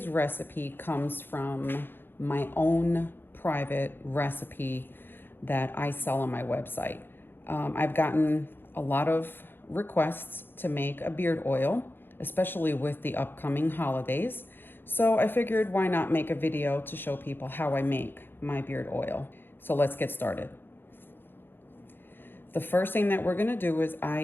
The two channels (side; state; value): right; late; 0.10 ms